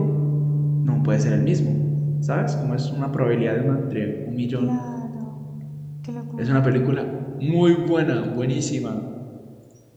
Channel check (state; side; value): identical; both; correlation 1.00